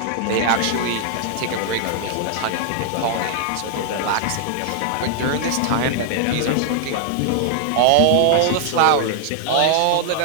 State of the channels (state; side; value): different; both; correlation -0.01